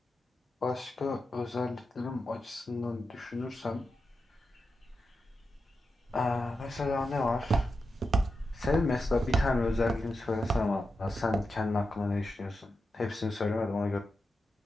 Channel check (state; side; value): normal; both; correlation 0.89